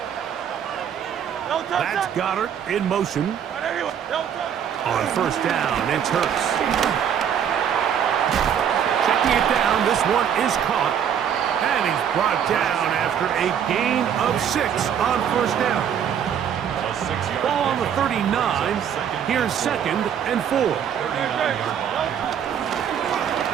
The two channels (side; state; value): left; quieter; 8.7 dB